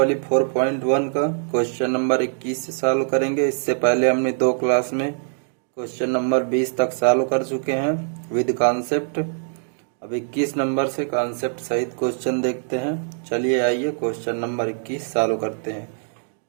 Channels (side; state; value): left; silent; 64 dB below the other